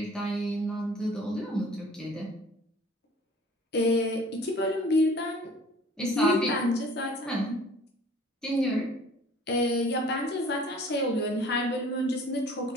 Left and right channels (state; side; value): normal; both; correlation 0.49